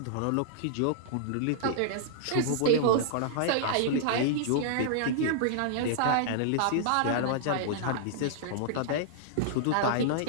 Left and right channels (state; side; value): different; both; correlation -0.01